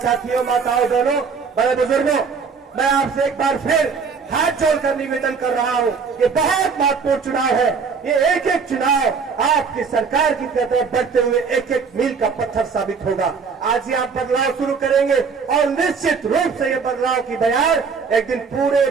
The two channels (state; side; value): quieter; left; 5.5 dB